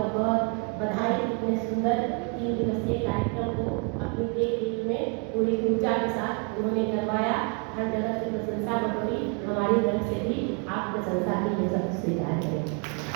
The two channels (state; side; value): quieter; left; 36.8 dB